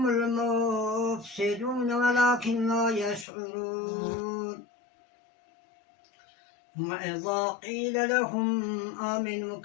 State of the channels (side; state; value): right; drops out; at 3.2 s